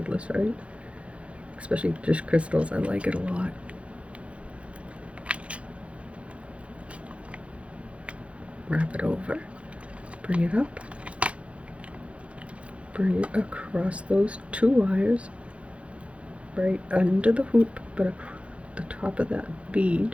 right? Especially just crystals, I like it a lot. Wrap it over, bring it up, bring it across those 2 wires, right under the hoop, but the top of that bead.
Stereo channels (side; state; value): left; late; 0.062 ms